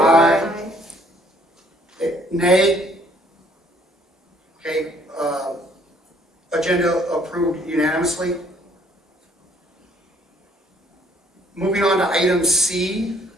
Nay? Okay, agenda approved unanimously. Moving on to item C,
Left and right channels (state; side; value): normal; both; correlation 0.63